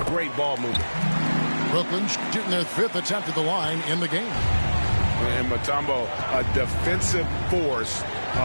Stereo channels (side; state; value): both; inverted; correlation -1.00